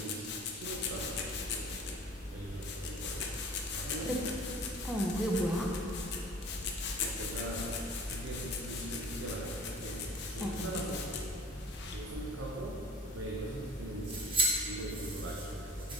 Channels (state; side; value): normal; both; correlation 0.47